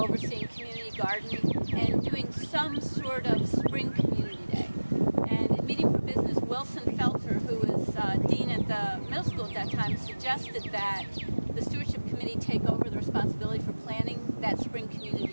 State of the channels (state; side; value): inverted; both; correlation -1.00